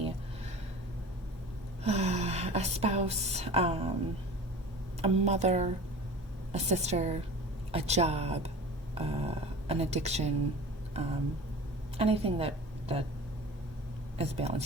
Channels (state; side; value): normal; both; correlation 0.38